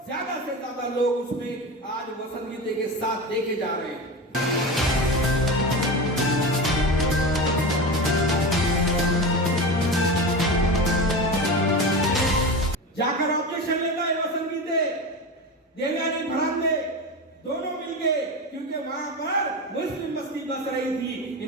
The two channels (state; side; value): normal; both; correlation 0.24